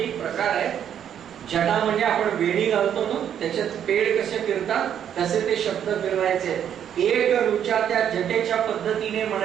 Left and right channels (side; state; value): left; quieter; 9.3 dB